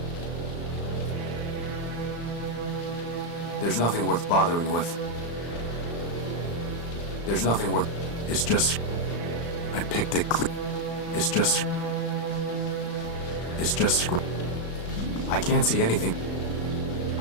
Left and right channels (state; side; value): late; right; 35 ms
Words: There's nothing worth bothering with. There's nothing worth... It's just... I picked it clean. It's just... It's just... I can't see anything.